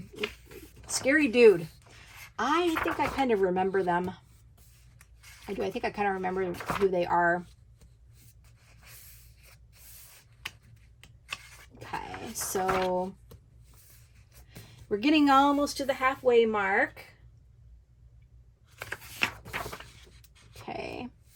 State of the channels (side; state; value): both; identical; correlation 1.00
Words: scary dude. I think I kind of remember them. I do. I think I kind of remember who they are. Okay, so we're getting almost to the halfway mark. Okay.